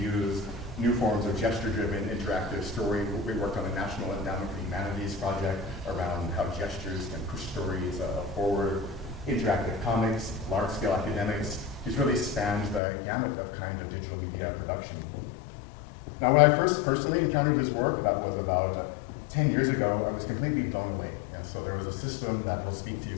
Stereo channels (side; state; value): right; drops out; at 12.8 s